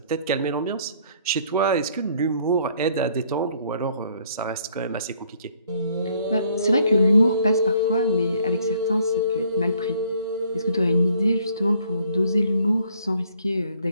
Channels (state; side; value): inverted; both; correlation -0.63